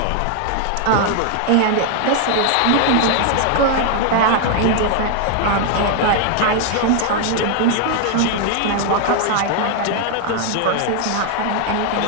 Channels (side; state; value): both; different; correlation 0.00